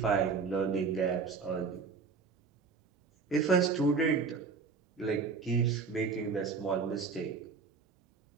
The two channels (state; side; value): quieter; left; 5.0 dB